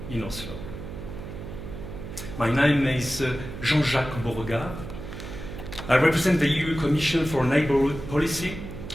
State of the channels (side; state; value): right; noise; hum, 10 dB below the sound